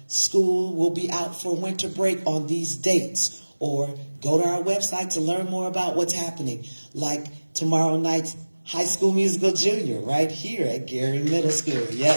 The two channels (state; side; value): inverted; both; correlation -1.00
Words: school will be out for winter break on these dates, or go to our website to learn more about what's happening, like tomorrow night's High School Musical Junior right here at Gary Middle School.